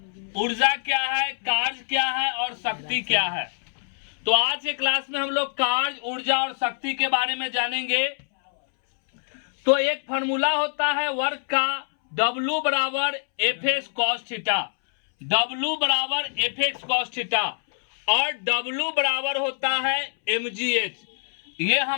ऊर्जा क्या है, कार्य क्या है और शक्ति क्या है। तो आज के क्लास में हम लोग कार्य, ऊर्जा और शक्ति के बारे में जानेंगे। तो एक फॉर्मूला होता है वर्क का, W बराबर F x cos theta, W बराबर एफ एक्स कॉस थीटा और W बराबर होता है mgh। ये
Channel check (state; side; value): silent; right; 62 dB below the other